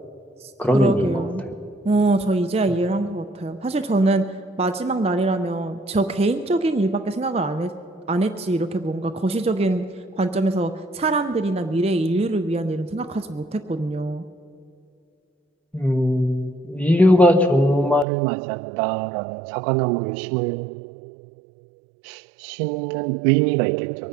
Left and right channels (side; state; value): left; drops out; at 18.1 s